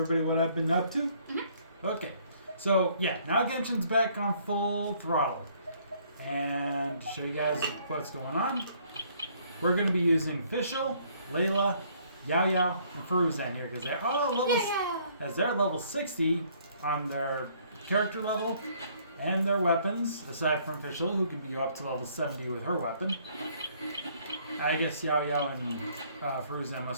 what I've been up to? Mm-hmm. Okay. So yeah, now Genshin's back on full throttle. And to show you guys what's going on, we're going to be using Fischl, Layla, Yao Yao, and Fruzan here because they're all levels, as they're level 60 on their character level. And their weapons, aside from Fischl, who can be up to level 70 with her weapon. I guess Yao Yao and Fruzan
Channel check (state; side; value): inverted; both; correlation -0.63